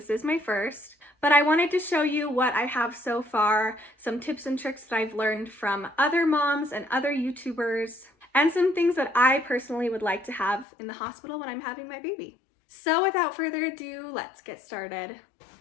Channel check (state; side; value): drops out; right; at 10.7 s